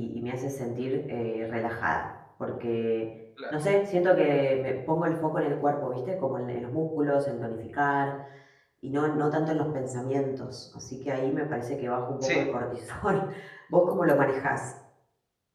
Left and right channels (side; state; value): both; identical; correlation 1.00